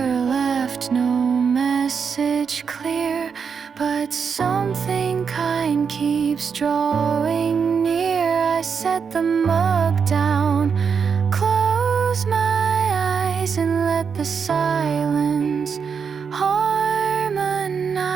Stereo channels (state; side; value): quieter; left; 6.3 dB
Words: left, no message clear, but something kind keeps drawing near. I set the mug down, close my eyes, and let the silence harmonize